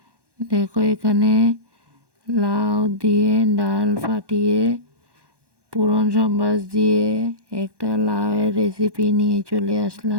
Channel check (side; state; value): left; late; 1.1 ms